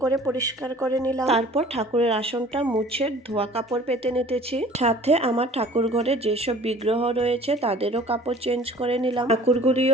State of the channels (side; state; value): both; normal; correlation 0.48